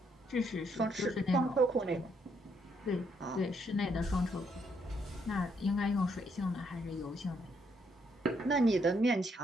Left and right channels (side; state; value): both; normal; correlation 0.73